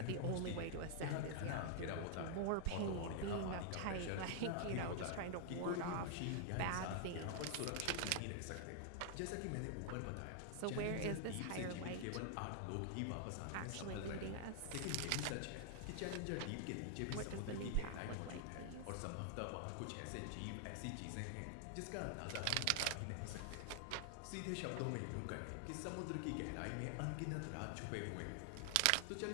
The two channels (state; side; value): different; both; correlation 0.00